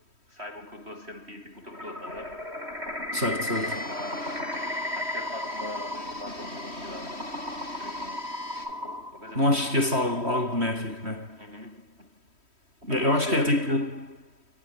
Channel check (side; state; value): left; late; 3.1 ms